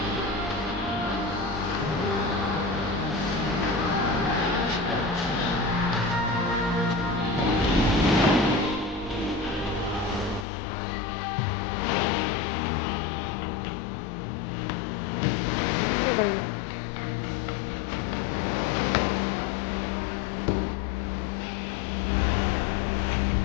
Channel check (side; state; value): right; drops out; at 10.5 s